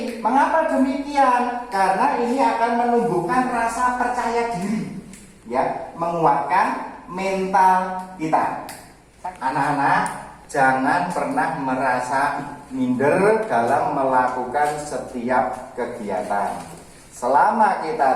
Mengapa demikian? Karena ini akan menumbuhkan rasa percaya diri ya, menguatkan mental kita. Anak-anak, jangan pernah merasa minder dalam melakukan setiap kegiatan. Selama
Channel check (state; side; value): identical; both; correlation 1.00